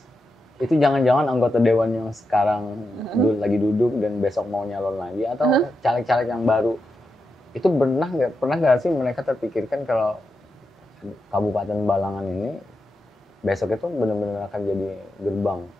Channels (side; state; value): both; normal; correlation 0.87